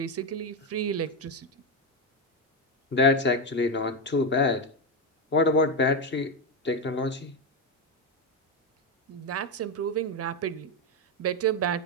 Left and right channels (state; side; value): normal; both; correlation 0.08